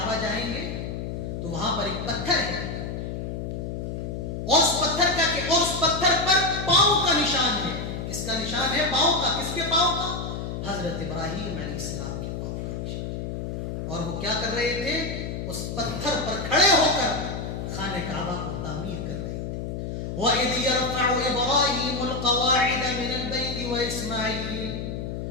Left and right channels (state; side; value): noise; left; hum, 5 dB below the sound